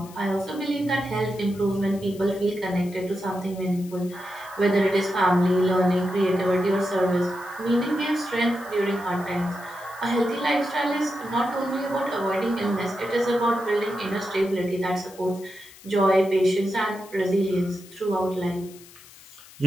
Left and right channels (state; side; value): noise; left; hiss, 21 dB below the sound